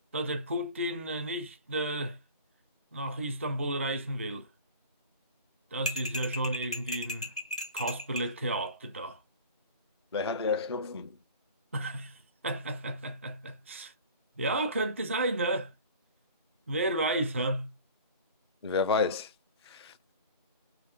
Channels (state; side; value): inverted; both; correlation -0.40